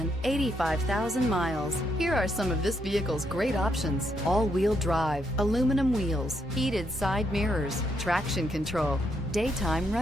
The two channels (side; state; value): both; normal; correlation 0.77